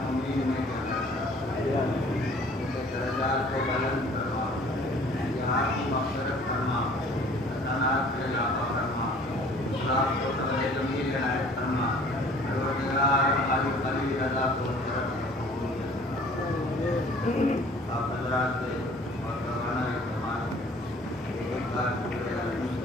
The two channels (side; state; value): both; normal; correlation 0.52